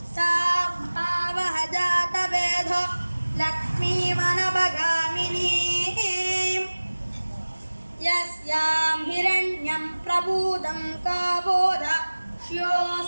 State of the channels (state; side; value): inverted; both; correlation -1.00